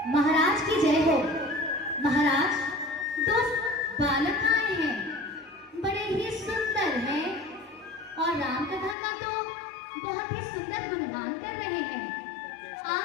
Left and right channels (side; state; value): right; drops out; at 9.0 s